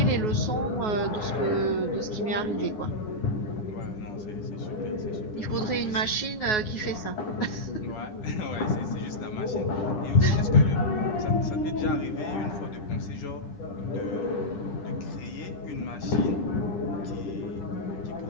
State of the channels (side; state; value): right; late; 9.4 ms